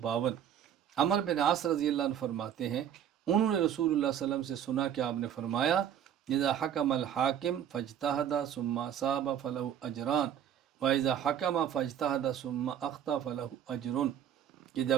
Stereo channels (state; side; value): quieter; left; 9.7 dB